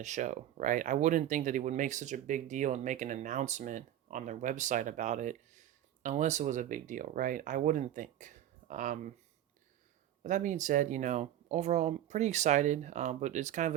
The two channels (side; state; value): left; quieter; 12.0 dB